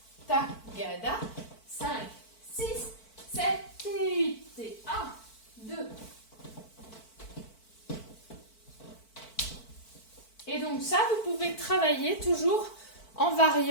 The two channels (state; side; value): late; right; 4.5 ms